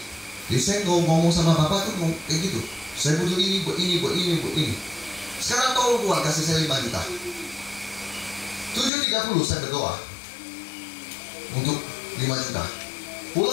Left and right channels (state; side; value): drops out; right; at 8.9 s